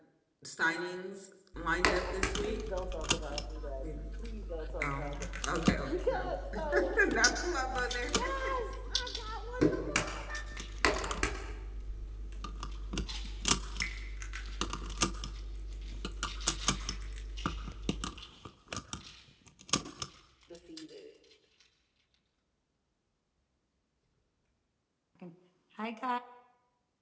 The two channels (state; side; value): identical; both; correlation 1.00